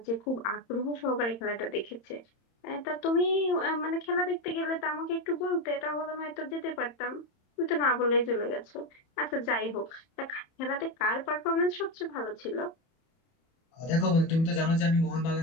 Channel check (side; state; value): right; late; 31 ms